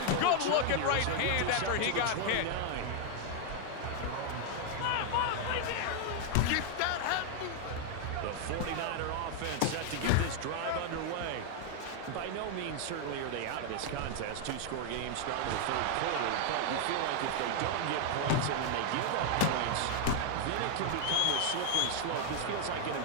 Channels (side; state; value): both; different; correlation 0.00